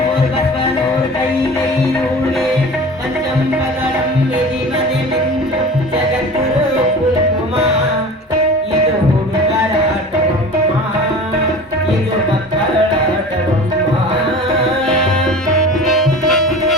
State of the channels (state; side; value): normal; both; correlation 0.38